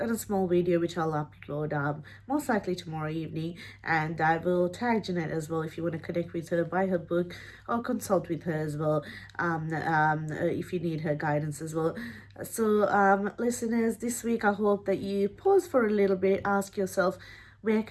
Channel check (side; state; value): both; identical; correlation 1.00